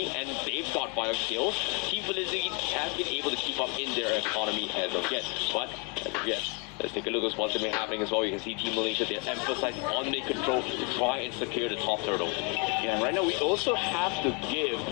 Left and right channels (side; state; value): right; quieter; 33.9 dB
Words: and they've got 5 kills, Team Philippines has been able to keep up in their economy as of yet. But as of yet, let's take a look at what's been happening as well. You can see Team Malaysia, they're emphasizing on mid control to try and secure the top turtle. Yeah, and right now we also have to give